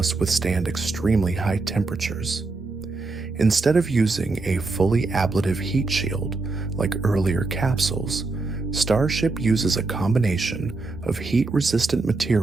withstand extremely high temperatures. Instead of using a fully ablative heat shield like earlier capsules, Starship uses a combination of heat-resistant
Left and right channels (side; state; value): left; quieter; 3.6 dB